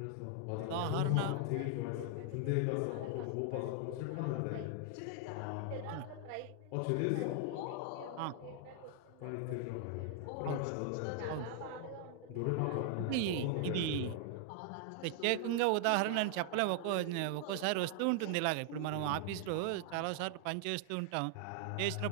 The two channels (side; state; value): both; different; correlation 0.00